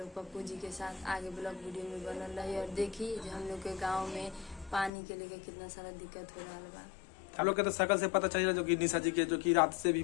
पप्पू जी के साथ आगे ब्लॉग वीडियो में बनल रही और देखी जो हम लोग के गाँव में पानी के लेके कितना सारा दिक्कत हो रहा बा। आप लोग के तो शकल से पता चल जो कि निशा जी के जो कि रात से भी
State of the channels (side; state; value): right; drops out; at 4.9 s